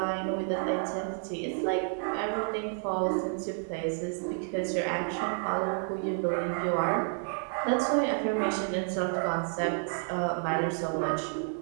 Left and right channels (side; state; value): left; silent; 58 dB below the other